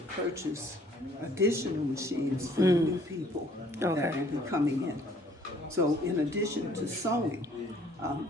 purchase additional machines for the new people that will be coming in. So in addition to sewing,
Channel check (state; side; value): normal; both; correlation 0.59